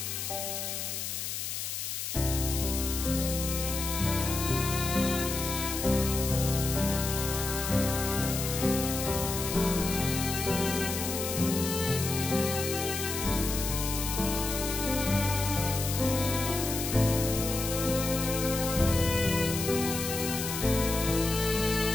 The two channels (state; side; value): noise; left; hiss, 4 dB below the sound